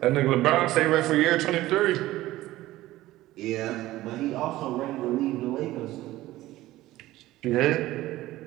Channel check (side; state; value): left; quieter; 16.4 dB